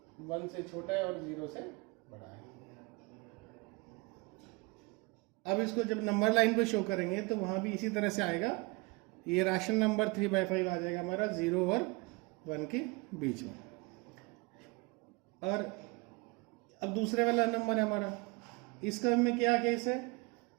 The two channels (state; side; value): quieter; left; 26.6 dB